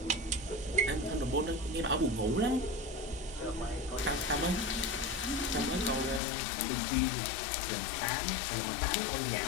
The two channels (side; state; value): right; drops out; at 6.2 s